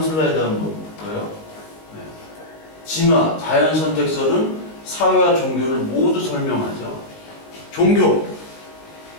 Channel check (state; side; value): late; right; 19 ms